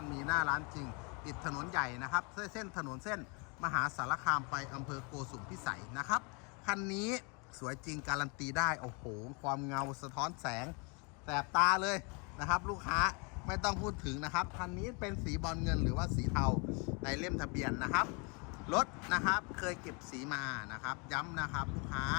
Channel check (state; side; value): quieter; right; 32.9 dB